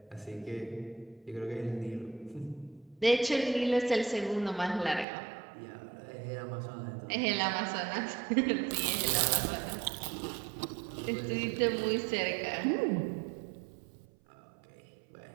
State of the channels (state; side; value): drops out; left; at 5.1 s